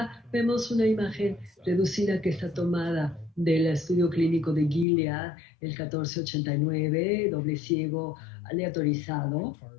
vemos una imagen reducida que está tomada del estudio clínico de Gilead, el 1489, doble ciego aleatorizado,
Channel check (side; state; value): right; drops out; at 4.9 s